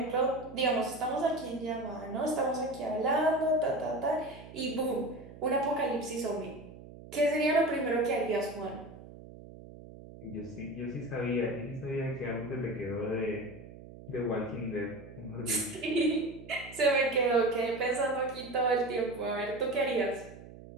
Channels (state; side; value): noise; right; hum, 16 dB below the sound